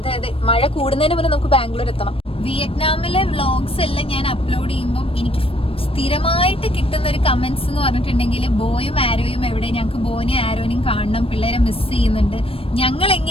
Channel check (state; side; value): late; right; 0.27 ms